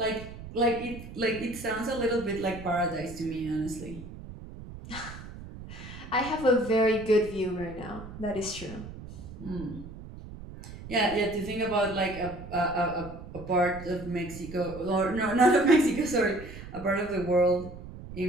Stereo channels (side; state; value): right; noise; rumble, 13 dB below the sound